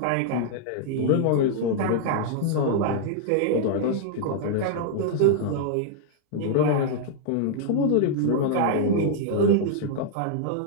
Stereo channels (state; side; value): different; both; correlation -0.01